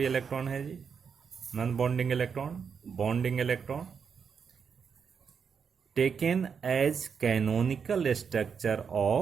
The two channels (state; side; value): quieter; left; 6.5 dB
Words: electron है जी, non bonding electron, bonding electron, taken as canonical structure